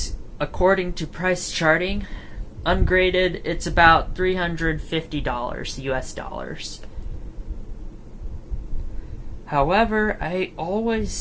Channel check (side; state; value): both; identical; correlation 1.00